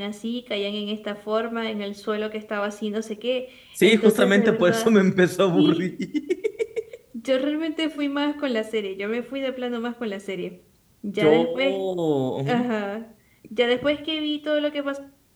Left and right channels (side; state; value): both; identical; correlation 1.00